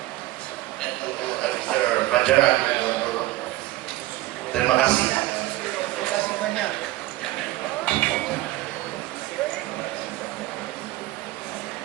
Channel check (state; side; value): quieter; left; 17.1 dB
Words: Mr. Fajar, terima kasih